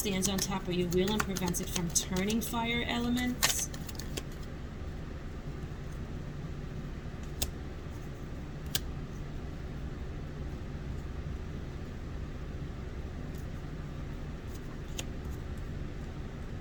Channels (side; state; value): both; identical; correlation 1.00